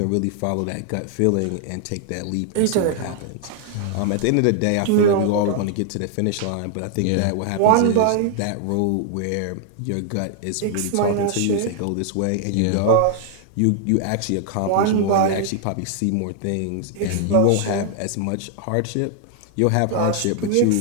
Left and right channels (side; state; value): both; different; correlation 0.00